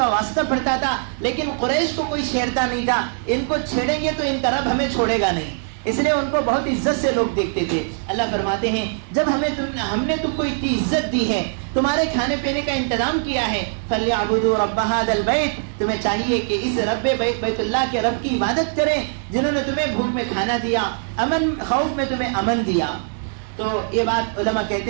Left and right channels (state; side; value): silent; left; digital silence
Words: واسطہ پڑتا تھا, لیکن قریش کو کوئی چھیڑتا نہیں تھا. ان کو چھیڑیں گے تو ان کا رب ہمیں چھوڑے گا نہیں, اس لیے ان کو بہت عزت سے لوگ دیکھتے تھے. اللہ فرماتے ہیں جب ہم نے تم کو اتنی عزت دی ہے, تمہارے کھانے پینے کا انتظام کیا ہے, فَلْيَعْبُدُوا رَبَّ هَذَا الْبَيْتِ, تمہیں چاہیے کہ اس رب بیت اللہ کے رب کی عبادت کریں جنہوں نے تمہیں بھوک میں کھانا دیا, خوف میں تمہیں امن دیا. تو یہ بات علماء